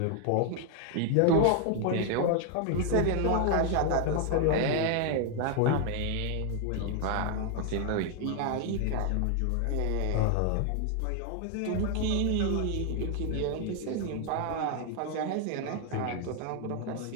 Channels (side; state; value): both; different; correlation 0.00